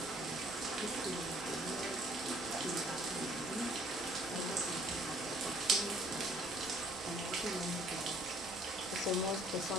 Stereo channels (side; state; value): both; normal; correlation 0.60